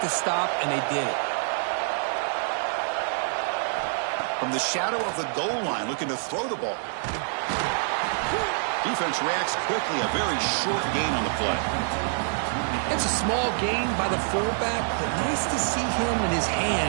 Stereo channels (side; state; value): left; silent; digital silence